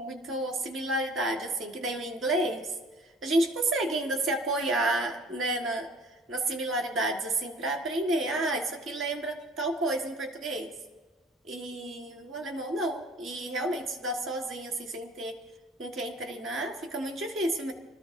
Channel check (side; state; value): both; normal; correlation 0.49